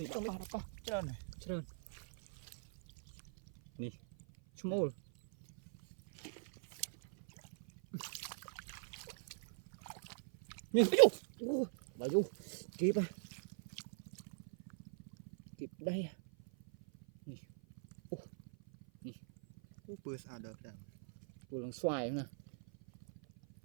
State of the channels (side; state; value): left; silent; 50 dB below the other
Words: đapa trơn này trơn nè small nè bà du kịp à kịp đây à nè bữa sao được đằng vừa lần xoài nè